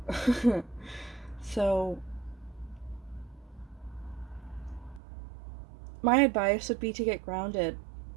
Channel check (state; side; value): drops out; left; at 5.0 s